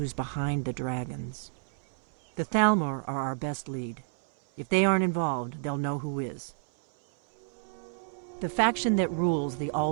behind the dragons. The Thalmor are our best lead. If they aren't involved, they'll know who is. The faction that rules the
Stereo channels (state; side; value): silent; left; 58 dB below the other